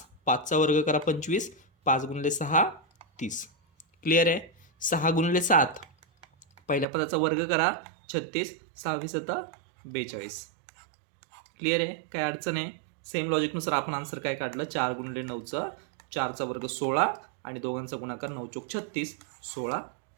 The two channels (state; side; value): drops out; left; at 6.9 s